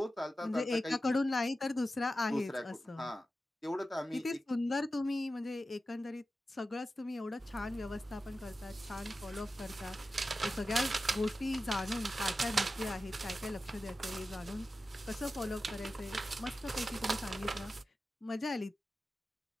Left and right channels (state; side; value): normal; both; correlation 0.93